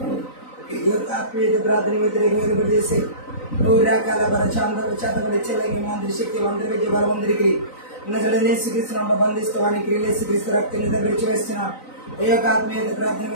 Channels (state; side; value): late; right; 3.9 ms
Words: ఈ యొక్క ఆత్మీయత ప్రార్థన వ్యతిరేకంగా చేసే రకాల చాతబడి చెల్లగి మంత్రి శక్తి మంత్రి విద్య బలవంతుడికి యేసుక్రీస్తును బంధిస్తవానికి యేసుక్రీస్తు రక్తం చేత విడిచివేస్తున్న ఈ యొక్క ఆత్మీయత ప్రార్థన